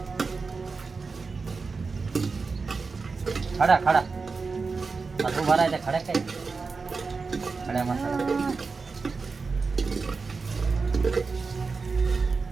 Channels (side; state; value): left; quieter; 4.5 dB